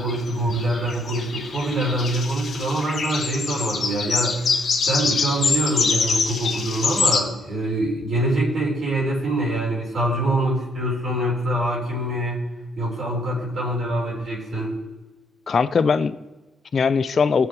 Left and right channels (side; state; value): both; normal; correlation 0.71